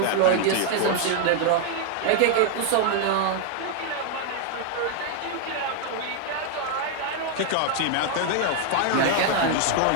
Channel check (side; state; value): both; different; correlation 0.00